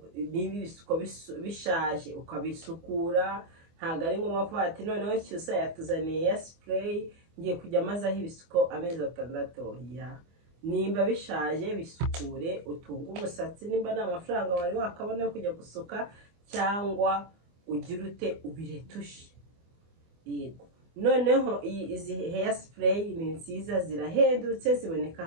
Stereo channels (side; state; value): left; late; 24 ms